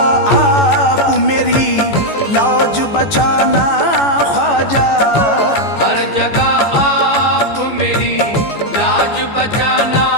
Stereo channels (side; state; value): right; late; 14 ms